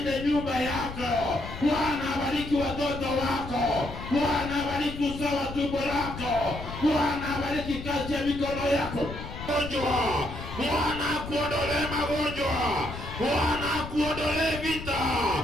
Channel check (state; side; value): noise; left; rumble, 10 dB below the sound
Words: nyumba yako. Bwana abariki watoto wako. Bwana abariki uzao wa tumbo lako. Bwana abariki kazi ya mikono yako. Bwana akuondolee magonjwa. Bwana akuondolee vita.